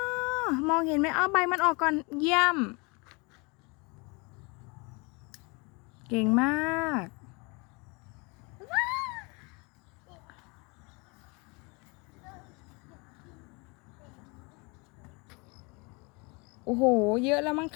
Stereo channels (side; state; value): right; quieter; 29.2 dB